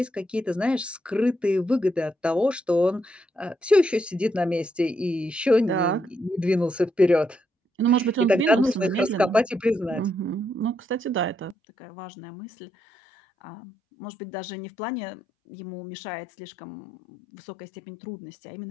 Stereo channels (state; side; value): drops out; right; at 11.6 s